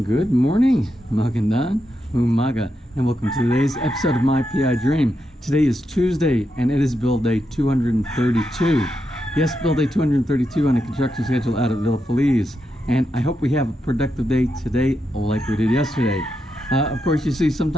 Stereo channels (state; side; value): normal; both; correlation 0.85